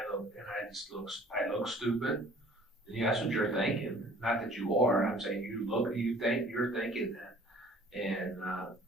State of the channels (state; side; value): normal; both; correlation 0.52